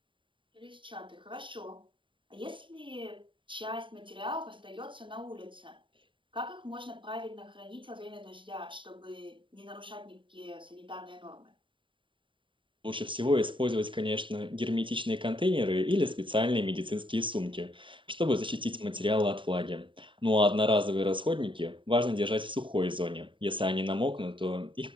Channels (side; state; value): left; late; 0.24 ms